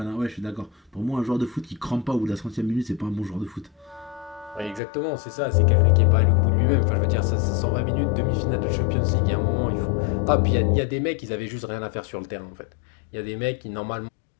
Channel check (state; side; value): drops out; right; at 4.8 s